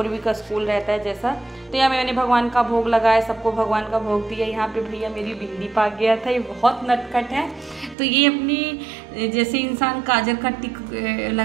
का स्कूल रहता है जैसा। तो यहाँ मैंने भगवान का भोग लगाया, सबको भगवान का भोग दिया। यहाँ पे भैया मेरी बिंदी पा गया था, ये बहुत नटखट है। तो ये अपनी जैसे इंसान काजल का टिक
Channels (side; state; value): left; drops out; at 8.0 s